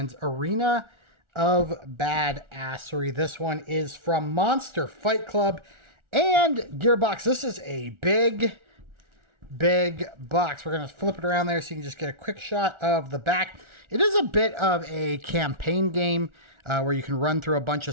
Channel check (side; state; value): left; late; 1.4 ms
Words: Arena of Badassery. This one is from Monster Fight Club and Gearbox. This is a big box. We're going to flip it around there so you can just get a quick shot of the back. It is a bit of a campaign game where you can run through a bunch